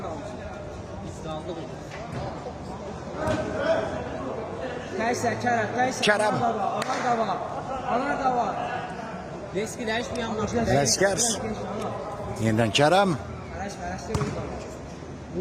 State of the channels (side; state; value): both; identical; correlation 1.00